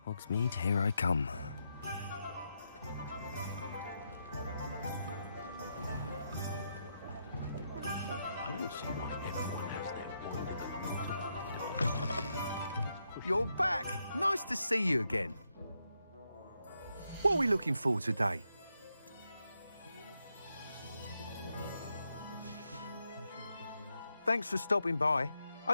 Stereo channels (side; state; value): both; inverted; correlation -0.82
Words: Hogsmeade, here I come. I don't see why everyone has their You're back! Nice to see you again. What are we looking for today? Thanks for stopping by.